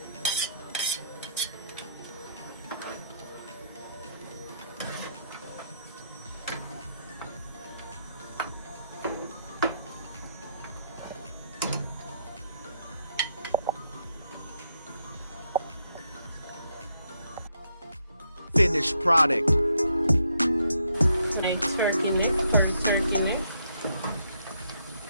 Finished product. My turkey neck, curry turkey neck.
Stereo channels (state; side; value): inverted; both; correlation -0.75